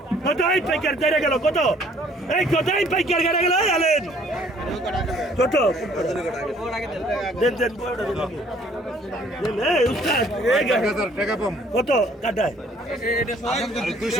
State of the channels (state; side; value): normal; both; correlation 0.59